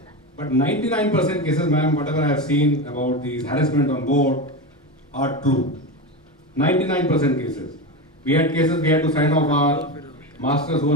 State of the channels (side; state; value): both; normal; correlation 0.19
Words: But 99% cases, ma'am, whatever I have seen about these harassment on board are true. 99% cases. We had cases we had to sign off our masters who